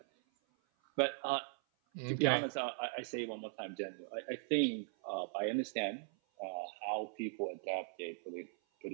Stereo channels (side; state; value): left; silent; 52 dB below the other